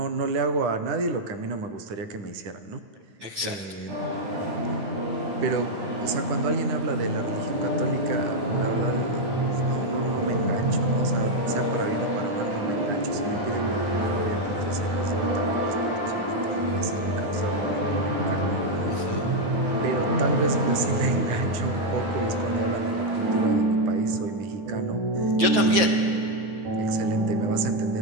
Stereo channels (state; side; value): late; left; 9.5 ms